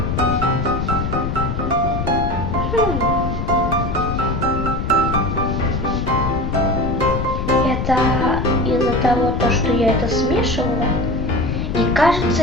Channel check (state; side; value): noise; left; rumble, 3 dB below the sound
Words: Это из-за того, что я это смешивала и,